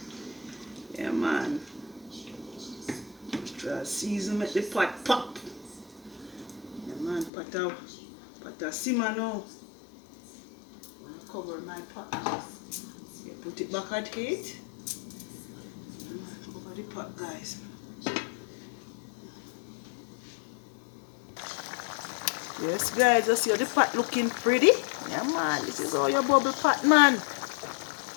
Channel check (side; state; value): right; drops out; at 7.3 s